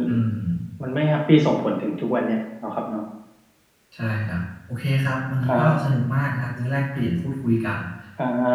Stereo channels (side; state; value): both; identical; correlation 1.00